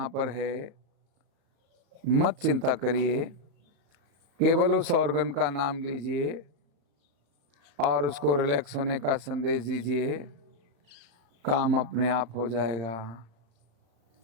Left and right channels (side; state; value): left; late; 35 ms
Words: पर है, मत चिंता करिए, केवल उस ऑर्गन का नाम लीजिए और उसको रिलैक्स होने का संदेश दीजिए, काम अपने आप हो जाएगा।